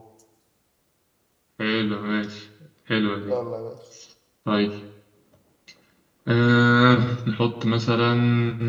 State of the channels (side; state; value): both; identical; correlation 1.00